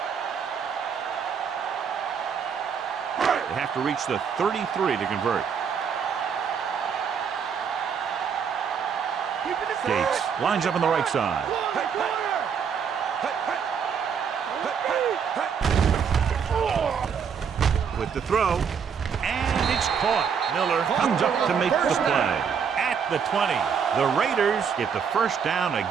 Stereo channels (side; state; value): left; quieter; 6.9 dB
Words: They have to reach the 33 to convert. Gates lines up on the right side. With the throw, and it's caught. Miller comes up to make the play. At the 20, the Raiders get the first down